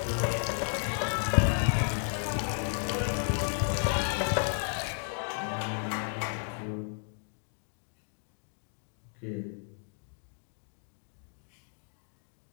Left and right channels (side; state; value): right; silent; 56 dB below the other